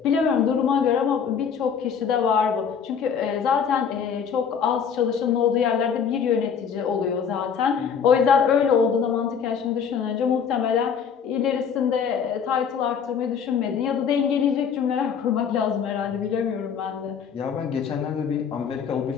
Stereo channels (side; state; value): right; quieter; 7.0 dB